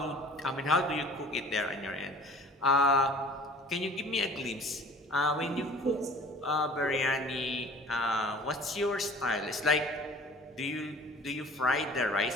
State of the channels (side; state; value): both; normal; correlation 0.47